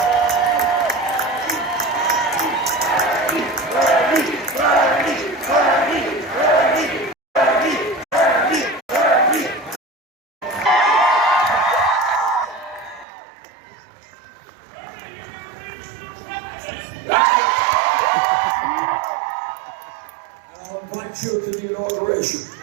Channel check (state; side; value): drops out; left; at 13.1 s